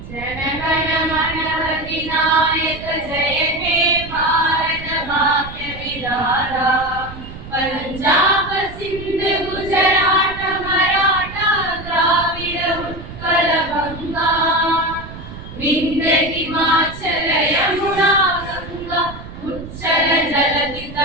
जनगण मन अधिनायक जय हे भारत भाग्य विधाता पंजाब सिंध गुजरात मराठा द्राविड उत्कल गंगा विंध्य हिमाचल यमुना गंगा उच्चल जलधि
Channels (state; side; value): noise; right; rumble, 13 dB below the sound